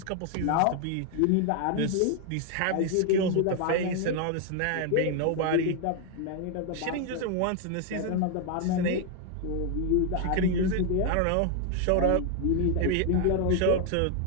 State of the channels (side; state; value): both; different; correlation 0.00